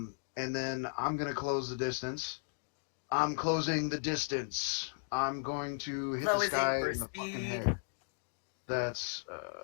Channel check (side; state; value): right; silent; 54 dB below the other